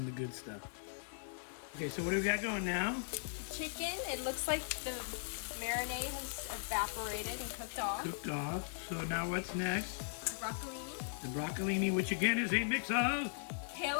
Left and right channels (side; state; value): right; silent; 52 dB below the other